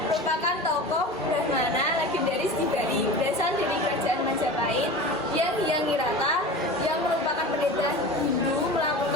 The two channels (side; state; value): both; normal; correlation 0.33